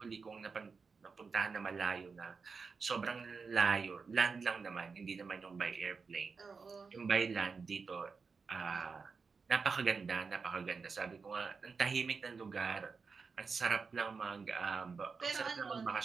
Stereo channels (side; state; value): left; quieter; 5.0 dB